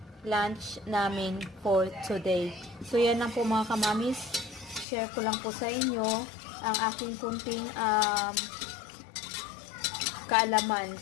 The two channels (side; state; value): right; drops out; at 4.9 s